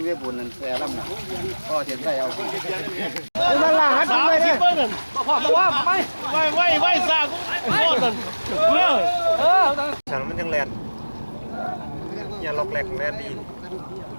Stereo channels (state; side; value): inverted; both; correlation -1.00